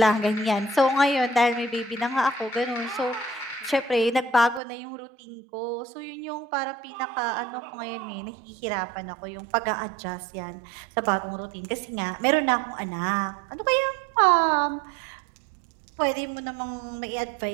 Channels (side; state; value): left; drops out; at 4.6 s